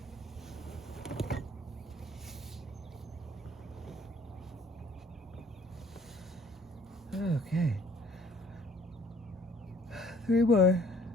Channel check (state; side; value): normal; both; correlation 0.58